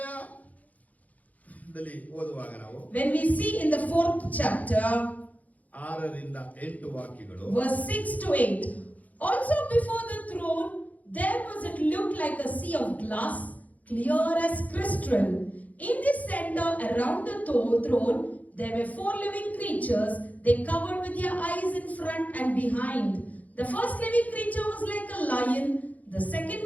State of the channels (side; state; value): right; late; 0.075 ms